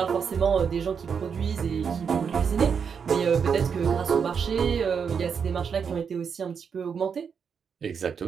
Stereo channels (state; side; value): quieter; left; 6.6 dB